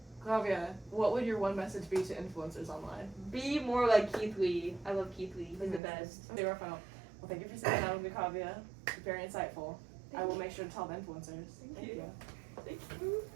Kavya, what would your one message be to influencers online? Be more like Keith Lee. I love Keith Lee. He's the best. Okay, we're final. Well, thank you for sitting down with me, Kavya. Very insightful. I will make sure to tell the influencers. Thank you. Thank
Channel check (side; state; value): left; drops out; at 5.8 s